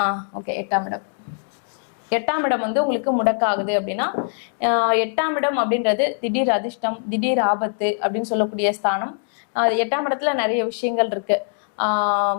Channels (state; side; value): silent; right; digital silence